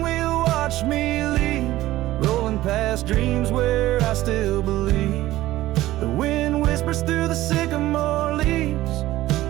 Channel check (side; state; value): left; quieter; 15.8 dB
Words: wheel watched me leave, rolling past dreams where I still believe. The wind whispers through the sycamore leaves,